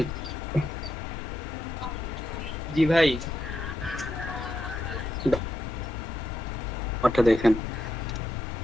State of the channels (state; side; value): normal; both; correlation 0.82